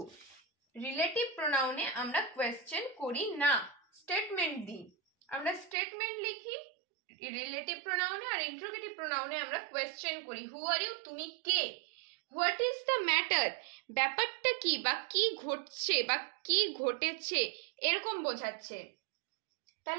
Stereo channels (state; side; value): drops out; left; at 5.8 s